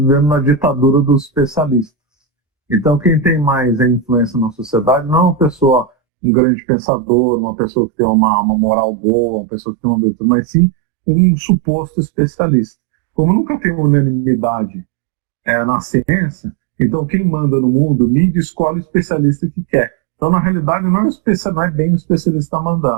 na ditadura dos especialistas. Então quem tem mais influência na sociedade não é uma pessoa, um grande pensador, uma pessoa que tem uma moral boa, uma pessoa que tem uma virtude, mas sim um suposto especialista. Como nunca tem unanimidade na ciência, então quem manda no mundo, mídia escolhe o especialista que quer. Então na realidade não é bem o especialista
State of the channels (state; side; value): drops out; left; at 5.9 s